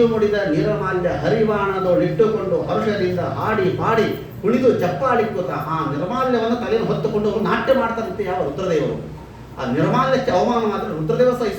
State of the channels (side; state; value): both; identical; correlation 1.00